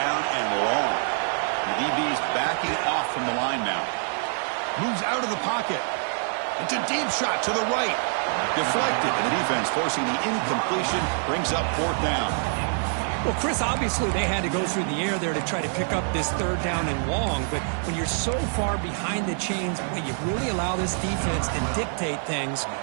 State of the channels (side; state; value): left; silent; 61 dB below the other